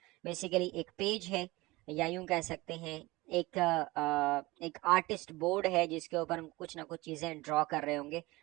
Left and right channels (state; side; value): quieter; left; 21.2 dB